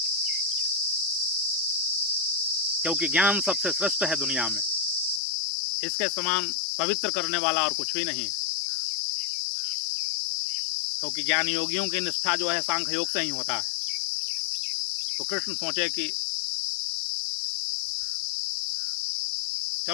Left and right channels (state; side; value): drops out; right; at 5.2 s